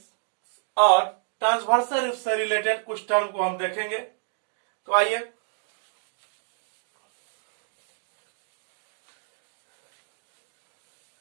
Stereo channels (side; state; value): left; silent; 59 dB below the other